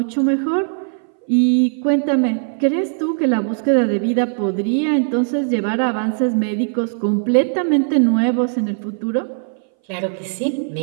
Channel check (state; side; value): silent; left; 60 dB below the other